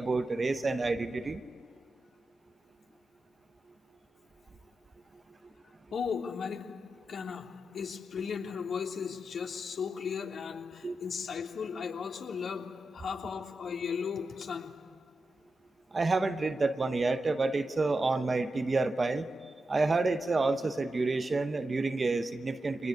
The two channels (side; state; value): both; normal; correlation 0.89